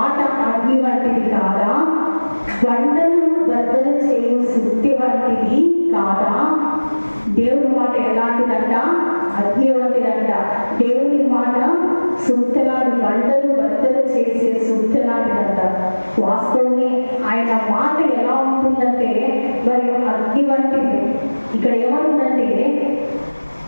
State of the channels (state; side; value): inverted; both; correlation -1.00